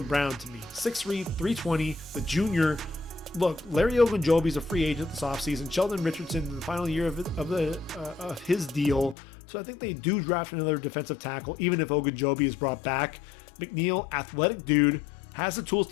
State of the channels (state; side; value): drops out; right; at 9.2 s